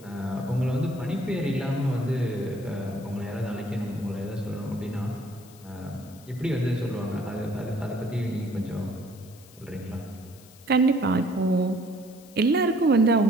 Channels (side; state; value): left; noise; hiss, 23 dB below the sound